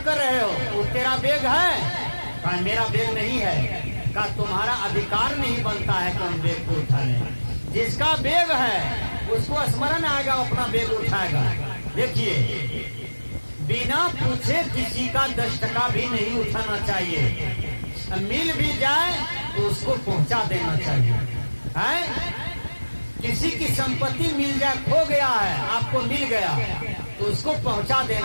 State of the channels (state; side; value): inverted; both; correlation -1.00